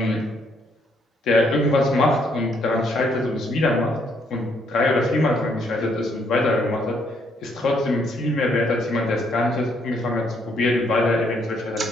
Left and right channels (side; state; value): both; normal; correlation 0.70